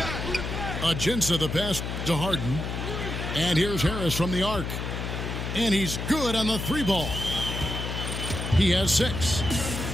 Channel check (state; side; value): noise; left; hum, 4 dB below the sound